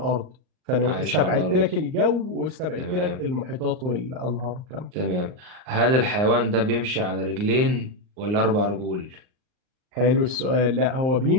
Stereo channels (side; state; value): left; late; 39 ms